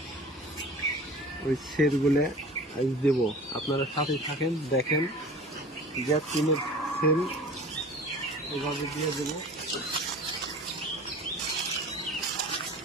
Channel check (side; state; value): both; normal; correlation 0.41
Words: ওই সেলগুলো আজ দেব। আপনারা সাথে থাকেন, দেখেন গ্যাস টিনের সেল এভাবে দিয়ে দেবো।